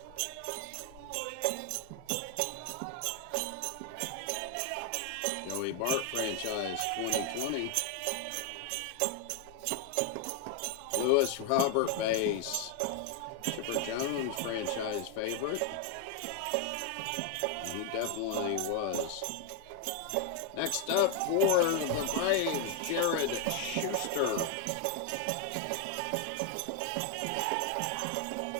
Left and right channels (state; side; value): different; both; correlation 0.01